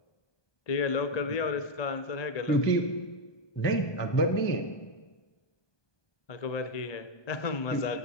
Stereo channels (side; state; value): right; late; 1.2 ms